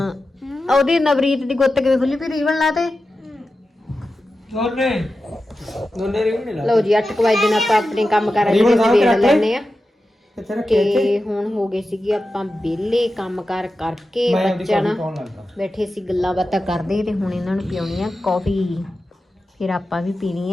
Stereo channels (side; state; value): both; normal; correlation 0.92